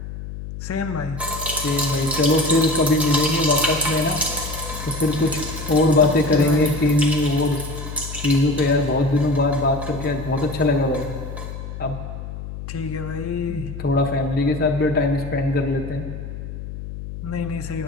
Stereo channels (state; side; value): noise; left; hum, 9 dB below the sound